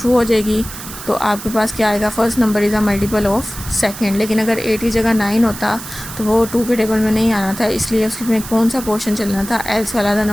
हो जाएगी तो आपके पास क्या आएगा, first number is a multiple of second. लेकिन अगर 8 की जगह 9 होता तो वो 2 के टेबल में नहीं आना था, इसलिए उसमें कौन सा पोर्शन चलना था, एल्स वाला, the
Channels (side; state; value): right; noise; hiss, 12 dB below the sound